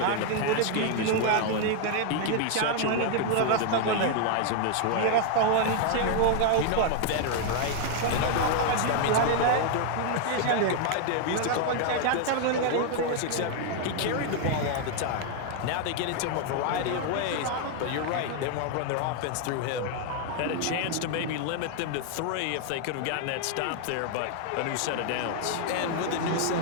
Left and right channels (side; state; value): both; different; correlation 0.00